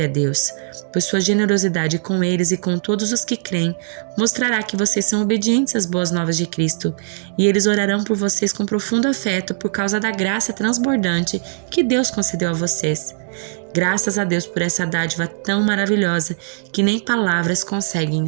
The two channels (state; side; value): silent; left; digital silence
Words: a Deus, pois sua generosidade com eles e com todos os que creem mostrará que vocês são obedientes às boas novas de Cristo, e eles orarão por vocês com profundo afeto por causa da graça transbordante que Deus concedeu a vocês. Graças a Deus por essa dádiva tão maravilhosa que nem palavras conseguem